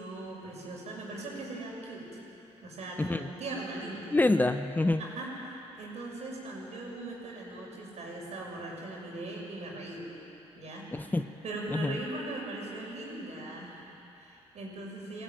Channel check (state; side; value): normal; both; correlation 0.81